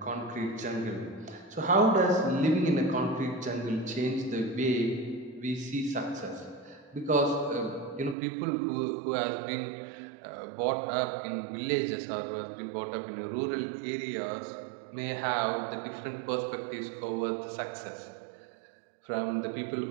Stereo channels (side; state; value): left; drops out; at 8.2 s